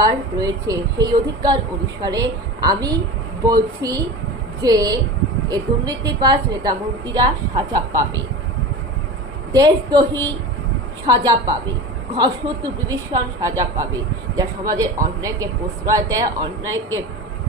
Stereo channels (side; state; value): both; normal; correlation 0.31